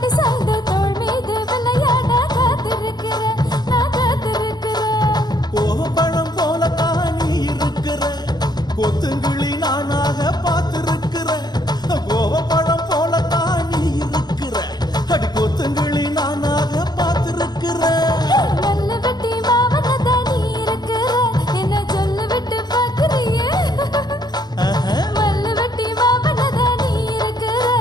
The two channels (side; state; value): right; late; 0.20 ms